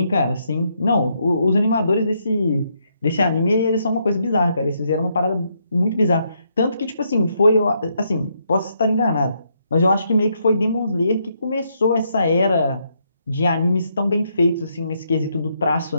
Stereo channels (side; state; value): both; inverted; correlation -0.76